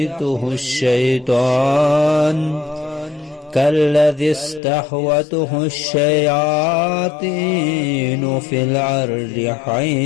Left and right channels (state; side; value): drops out; right; at 4.6 s